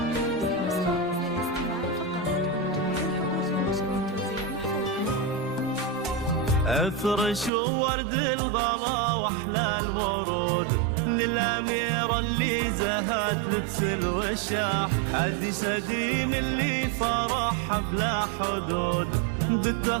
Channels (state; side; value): drops out; left; at 7.5 s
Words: ورد الغلا واحلى الورود للأميرة اللي زهت لبس الوشاح، حديث قديم اللي فرحها بلا حدود